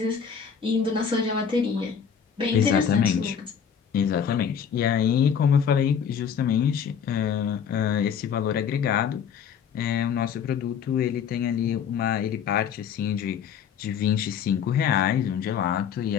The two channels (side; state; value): right; quieter; 7.5 dB